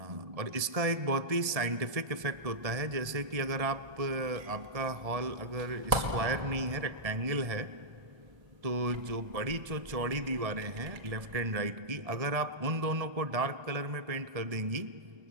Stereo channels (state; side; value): late; left; 1.7 ms